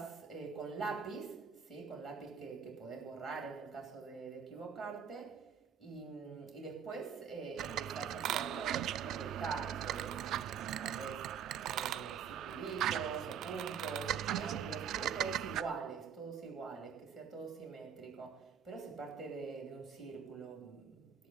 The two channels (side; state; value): left; quieter; 7.5 dB